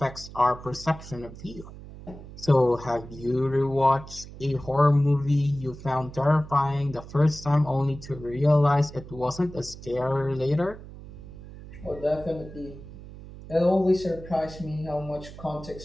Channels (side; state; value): right; noise; hum, 15 dB below the sound